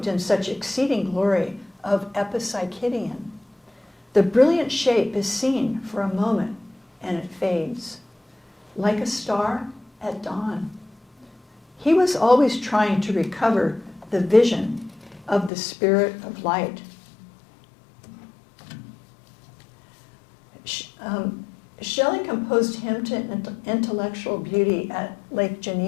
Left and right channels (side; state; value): right; drops out; at 15.5 s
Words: in such exceeding glory of Epipsychidion. The brilliant shape is seen for a moment, and it fades, like a star at dawn. He was always trying to recover the vision of the spirit of light. Shelley composed Hymn to Intellectual Beauty at Lake